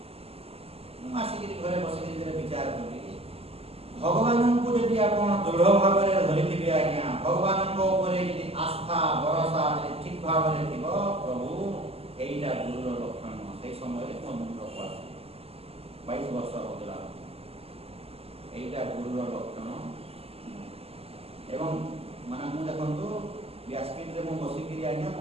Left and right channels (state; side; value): late; left; 0.29 ms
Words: ମୁଁ ଆସିକିରି ଘରେ ବସିକିରି ବିଚାର କଲି, ଭଗବାନଙ୍କୁ ଯଦି ଆପଣ ଦୃଢ଼ ଭାବରେ ଧରିଥିବେ ଆଜ୍ଞା, ଭଗବାନଙ୍କ ଉପରେ ଯଦି ଆସ୍ଥା ଭରସା ଯଦି ଠିକ ଭାବରେ ଥିବ, ପ୍ରଭୁ ଏଇଟା ଗୁରୁର ଲକ୍ଷଣ। ସେଇ ସମୟରେ ମୋ ମୁଣ୍ଡ ପଡେ 22 ବର୍ଷ ହଉଥିଲା, ଏଇଟା ଗୁରୁର ଲକ୍ଷଣ। ଏବଂ ମାନେ ମୁଁ ଦେଖନ୍ତୁ ବ୍ୟାସପୀଠରେ ମୁଁ ବସିକିରି ଆଜ୍ଞା